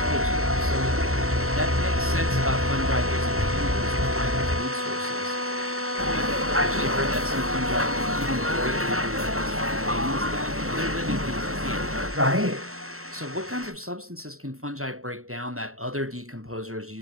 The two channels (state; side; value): late; left; 0.63 ms